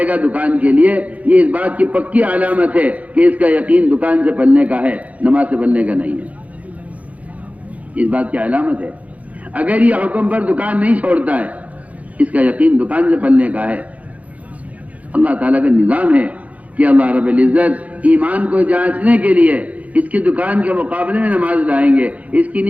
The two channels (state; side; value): late; left; 0.069 ms